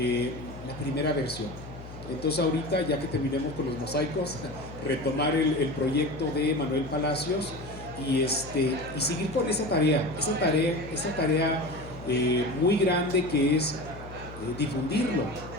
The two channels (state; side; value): noise; left; hum, 14 dB below the sound